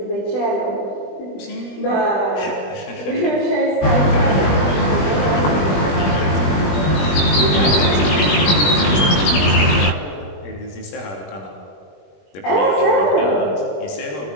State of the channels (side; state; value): right; late; 21 ms